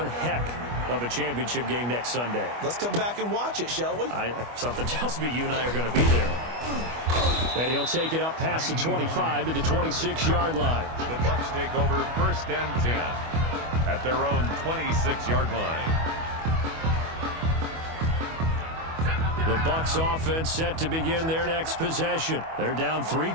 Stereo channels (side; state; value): left; late; 25 ms